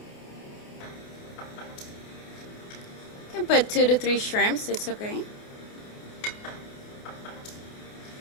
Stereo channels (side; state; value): right; late; 28 ms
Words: You can put 2 to 3 shrimps, it's okay.